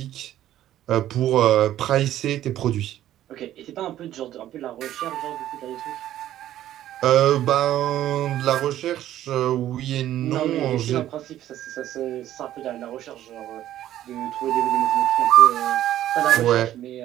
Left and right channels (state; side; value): quieter; left; 12.7 dB